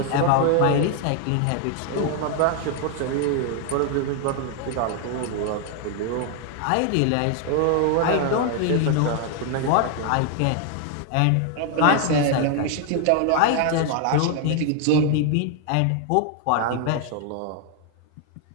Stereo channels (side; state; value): both; different; correlation 0.00